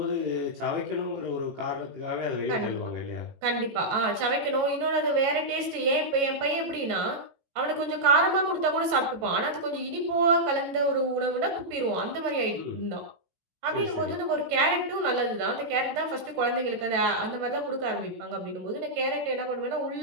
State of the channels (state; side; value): late; left; 18 ms